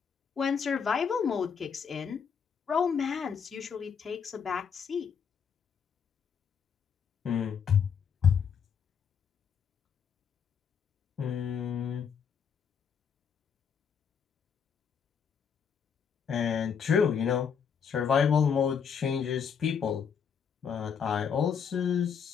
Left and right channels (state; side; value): quieter; right; 6.9 dB